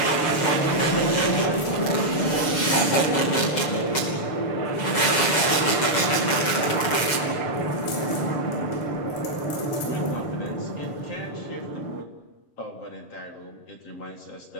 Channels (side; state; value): right; late; 7.4 ms